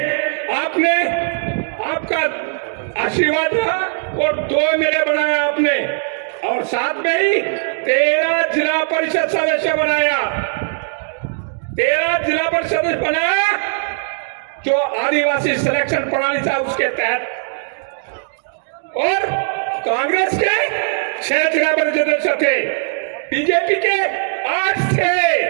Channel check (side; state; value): left; silent; digital silence